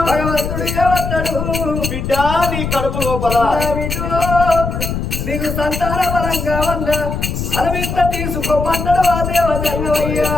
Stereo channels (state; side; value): noise; left; rumble, 4 dB below the sound